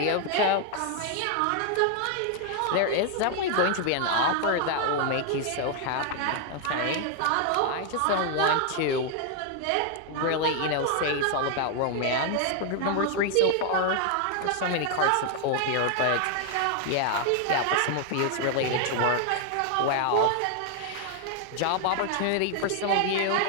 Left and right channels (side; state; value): both; different; correlation 0.00